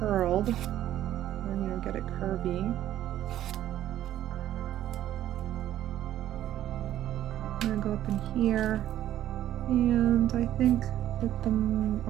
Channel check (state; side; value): quieter; left; 12.5 dB